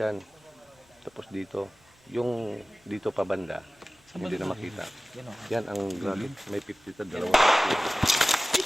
Tapos dito, yung dito pa banda, hindi na makita. Yan ang gamit. May 50 ta, dalawa.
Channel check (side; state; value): both; normal; correlation 0.96